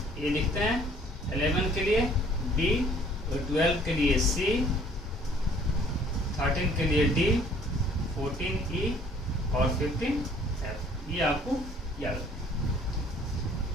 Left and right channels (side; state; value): both; normal; correlation 0.57